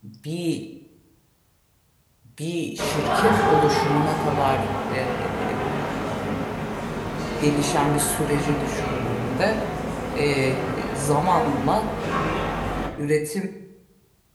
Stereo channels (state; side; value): identical; both; correlation 1.00